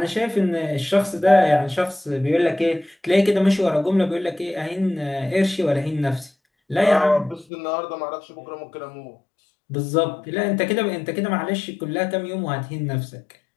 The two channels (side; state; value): right; drops out; at 7.5 s